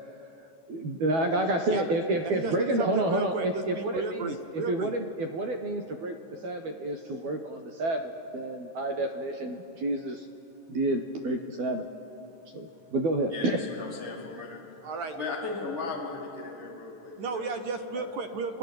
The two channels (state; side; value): late; left; 12 ms